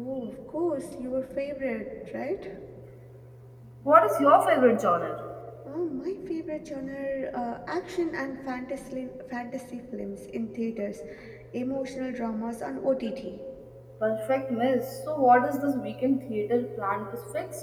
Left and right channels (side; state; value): both; identical; correlation 1.00